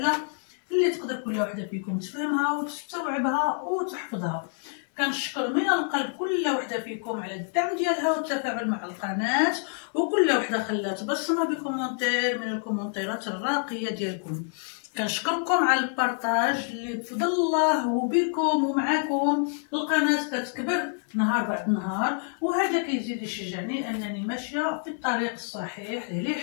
اللي تقدر كل وحدة فيكم تفهمها وتستوعبها وتحفظها. كنشكر من القلب كل وحده فيكم على الدعم ديالها والتفاعل مع القناه، وكل وحده خلات بصمه بكومونتير من الكومونتيرات الراقيه ديالكم. كنشكركم على البارطاج اللي بفضل الله وبكم ومعاكم القناه كتكبر نهار بعد نهار، وهذا كيزيد يشجعني انني ماشيه في الطريق الصحيح اللي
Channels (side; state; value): right; silent; 57 dB below the other